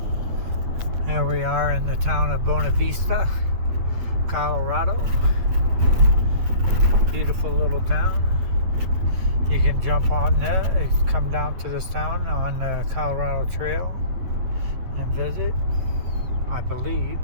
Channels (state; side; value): late; left; 8.8 ms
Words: There we are in the town of Buena Vista, Colorado. Beautiful little town. You can jump on there, come down to this town on the Colorado Trail and visit, I believe.